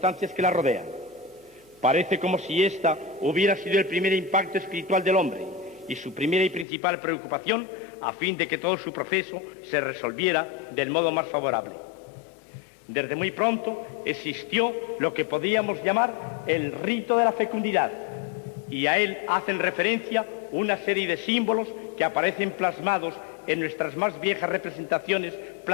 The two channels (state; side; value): drops out; right; at 6.7 s